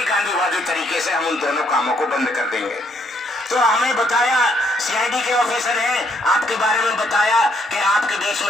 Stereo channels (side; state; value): both; normal; correlation 0.70